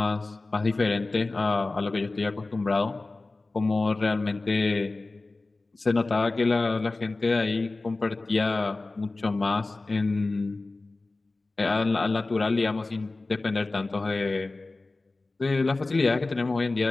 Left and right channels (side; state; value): right; quieter; 3.3 dB